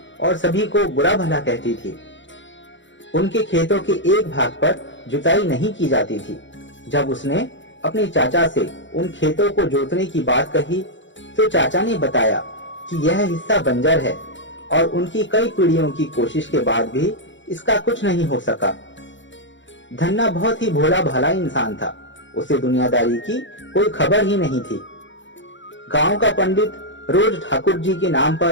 और सभी को बुरा भला कहती थी। उनके खेतों के एक भाग पर जुताई नहीं की जाती थी। जब उसने अपने चाचा से उन खेतों को जोतने की बात कही तो चाचा ने बताया कि यह हिस्सा बंजर है और उनकी कई पीढ़ियों की कोशिश के बाद भी इसका कुछ नहीं हो सका। धन्ना बहुत ही भोला भाला इंसान था। उसे दुनियादारी की कोई खबर ही नहीं थी। गांव का पंडित रोज ठाकुर जी के नाम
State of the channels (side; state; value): right; late; 0.54 ms